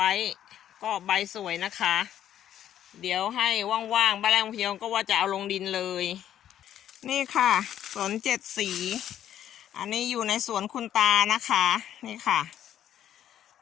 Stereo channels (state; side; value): quieter; right; 10.9 dB